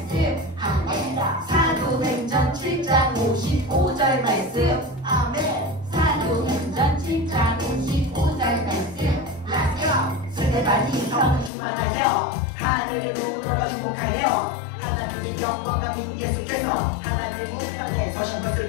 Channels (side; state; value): right; drops out; at 11.5 s